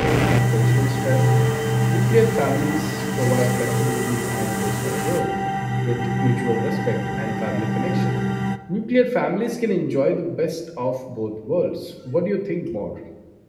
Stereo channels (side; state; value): both; identical; correlation 1.00